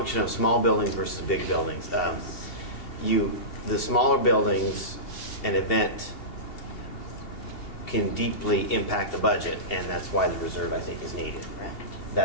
of small buildings versus big buildings. The smaller buildings, an event can deeply impact the budget, and that's why the reserve, I think, is needed. Right.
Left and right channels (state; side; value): late; right; 2.7 ms